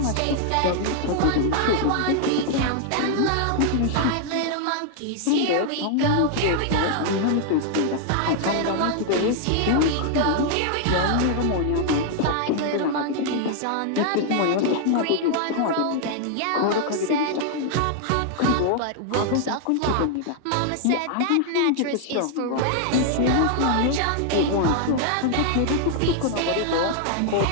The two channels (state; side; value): different; both; correlation 0.00